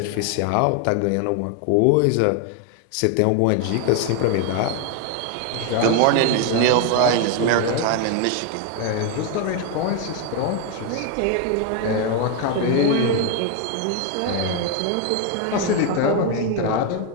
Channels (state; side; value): different; both; correlation 0.01